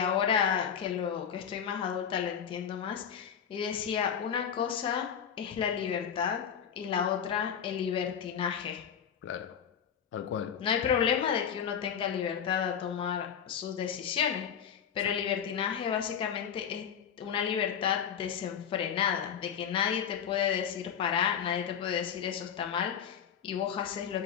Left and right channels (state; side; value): quieter; right; 8.1 dB